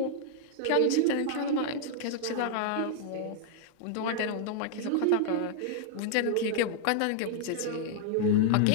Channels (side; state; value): both; different; correlation -0.01